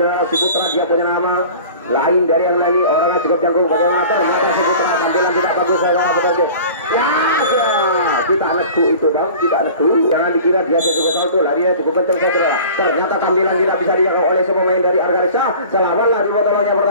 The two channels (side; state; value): both; inverted; correlation -0.42